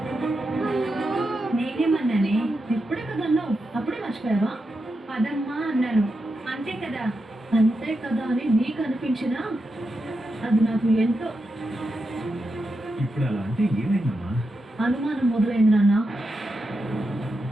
నేనేమన్నానే? ఇప్పుడే కదా అన్నావు, అప్పుడే మర్చిపోయావా? పదమ్మా అన్నాను, అంతే కదా. అంతే కదా అని నీకు అనిపించినా అది నాకు ఎంతో ఇప్పుడు అలా అంటే ఏమైందమ్మా? అనుమానం మొదలైంది నాన్న.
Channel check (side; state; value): both; normal; correlation 0.87